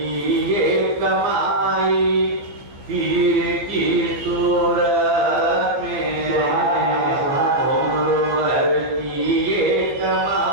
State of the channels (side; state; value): left; late; 15 ms